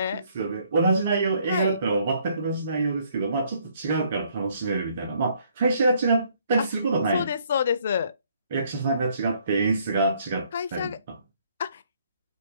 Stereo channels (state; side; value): inverted; both; correlation -0.65